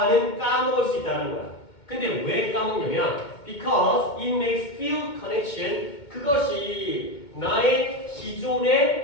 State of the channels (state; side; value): late; right; 2.2 ms